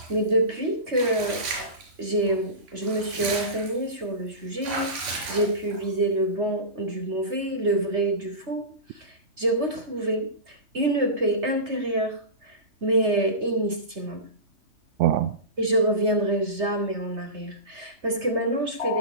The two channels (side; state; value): left; late; 3.5 ms